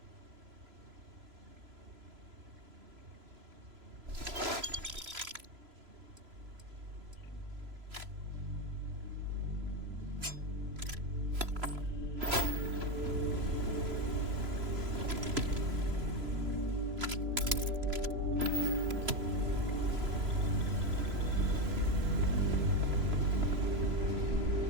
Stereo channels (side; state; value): left; late; 3.0 ms